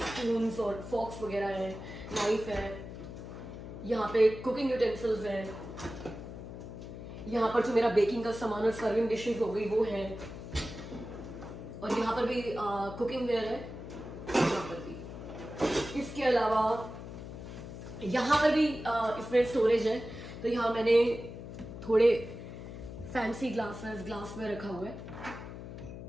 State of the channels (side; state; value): left; noise; hum, 11 dB below the sound